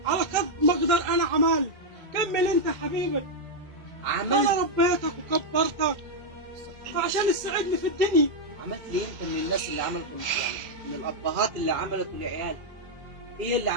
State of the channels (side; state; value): left; late; 2.1 ms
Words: على قد ما اقدر انا عملت. كمل انت يا حبيبي. عملت انا ربيتك وكبرتك فعشان تساعدني في الدنيا. عملت ليه انت من الناس اللي عملتوا يعني من الابهات اللي عملتوا لعيال؟ ايه اللي